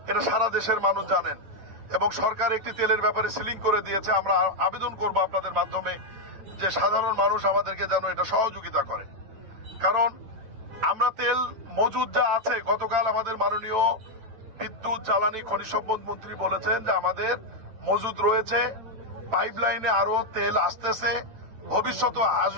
এটা সারা দেশের মানুষ জানেন এবং সরকার একটি তেলের ব্যাপারে সিলিং করে দিয়েছে। আমরা আবেদন করব আপনাদের মাধ্যমে যে সাধারণ মানুষ আমাদেরকে যেন এটা সহযোগিতা করে, কারণ আমরা তেল মজুদ যা আছে, গতকাল আমাদের মাননীয় বিদ্যুৎ, জ্বালানি, খনিজ সম্পদ মন্ত্রী বলেছেন যে আমাদের মজুদ রয়েছে, পাইপলাইনে আরো তেল আসতেছে, ভবিষ্যতে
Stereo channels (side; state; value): left; late; 9.1 ms